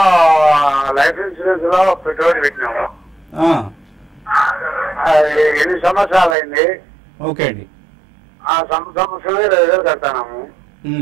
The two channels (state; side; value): drops out; left; at 6.4 s